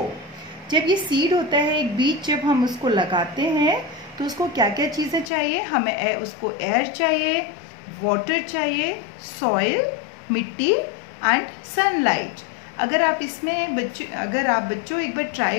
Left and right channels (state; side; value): drops out; right; at 5.3 s